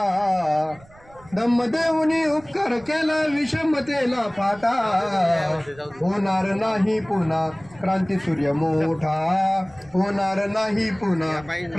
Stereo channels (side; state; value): right; noise; rumble, 25 dB below the sound